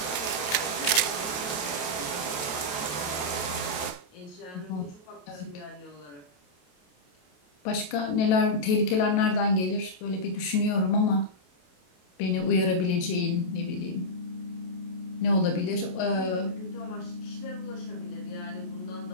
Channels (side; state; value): right; late; 27 ms